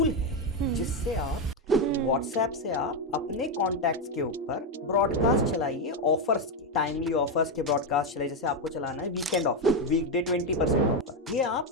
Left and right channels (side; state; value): both; normal; correlation 0.07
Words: है जिससे आप व्हाट्सएप से आप अपने कॉन्टैक्ट्स के ऊपर ब्रॉडकास्ट चलाइए, ऑफर्स के टाइमली ऑफर्स के ब्रॉडकास्ट चलाइए। जैसे आपको चलाना है वीकेंड ऑफर, वीकडे 20% ऑफर, ये आप